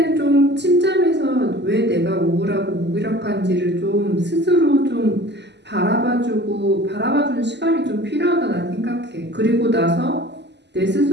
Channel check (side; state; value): left; late; 0.50 ms